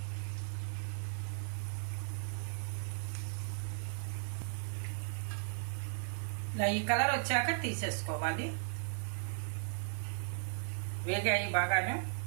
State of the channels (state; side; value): silent; left; digital silence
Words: ఇలా ఈ కలర్ వచ్చాక తీసేసుకోవాలి. వేగాయి బాగాను.